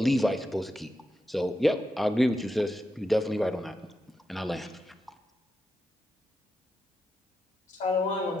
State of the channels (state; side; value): normal; both; correlation 0.87